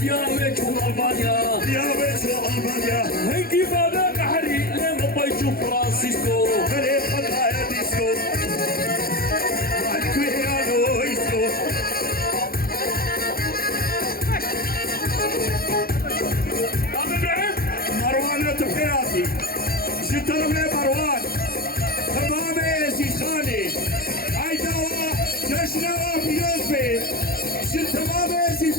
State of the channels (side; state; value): right; late; 0.44 ms